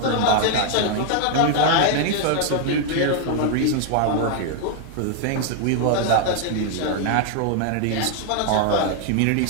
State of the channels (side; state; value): both; different; correlation 0.00